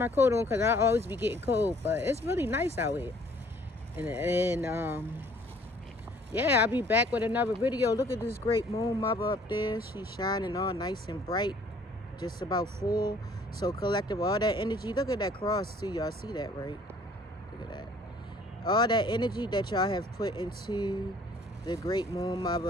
coat on because I always be getting cold, but it's really nice out here. And yeah, I'll be back with another video. Look at this great moon mother up there. She's shining all nice and bright, just about full. So collective, all that energy. Look at that cross too. Y'all see that, right? Look at that. All that energy that y'all have put into the great moon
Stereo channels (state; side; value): normal; both; correlation 0.57